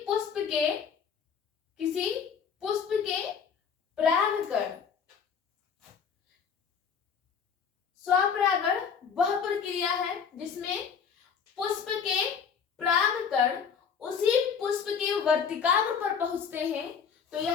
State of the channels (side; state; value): right; quieter; 6.7 dB